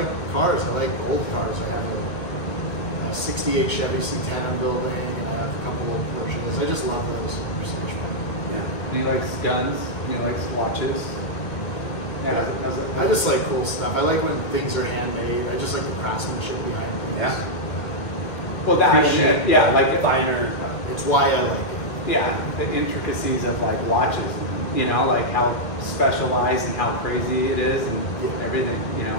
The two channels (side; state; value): right; late; 2.0 ms